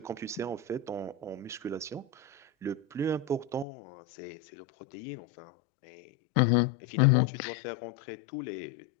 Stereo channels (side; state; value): right; drops out; at 3.7 s